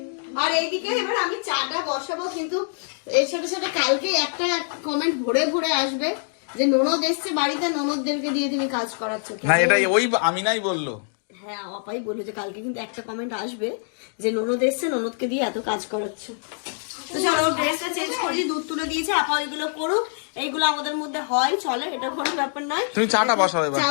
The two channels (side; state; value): right; silent; 61 dB below the other